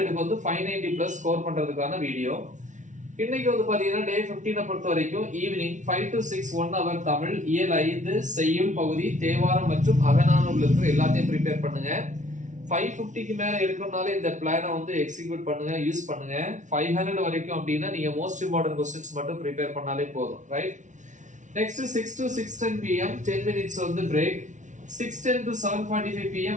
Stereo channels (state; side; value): late; left; 0.36 ms